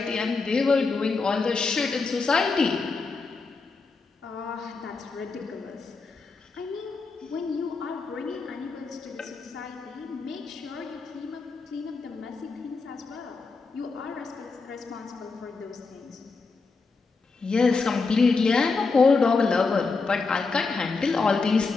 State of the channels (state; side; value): quieter; right; 4.3 dB